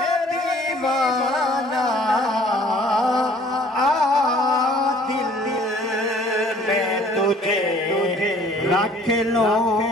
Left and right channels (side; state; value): both; normal; correlation 0.55